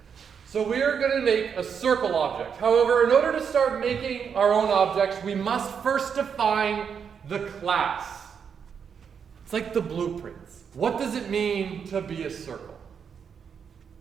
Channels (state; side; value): quieter; left; 7.0 dB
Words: So we are going to make a circle object. However, in order to start making our own objects, we must first define the class. It's like the blueprints. What does it mean to be a circle?